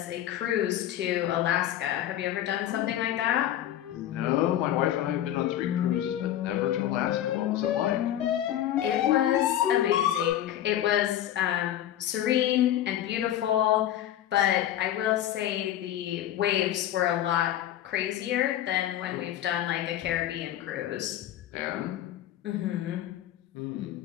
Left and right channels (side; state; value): right; quieter; 11.9 dB